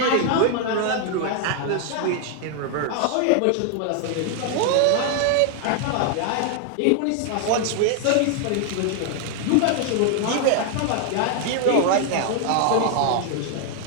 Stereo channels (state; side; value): different; both; correlation 0.00